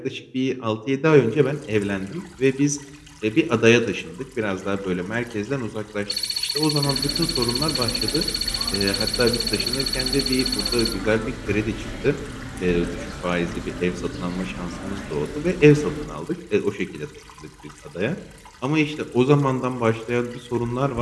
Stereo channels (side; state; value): both; identical; correlation 1.00